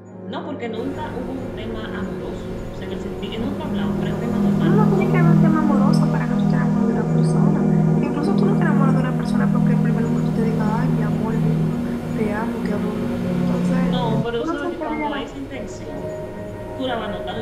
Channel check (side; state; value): both; identical; correlation 1.00